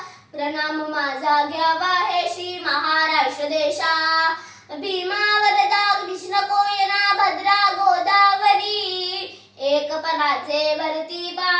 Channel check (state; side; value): identical; both; correlation 1.00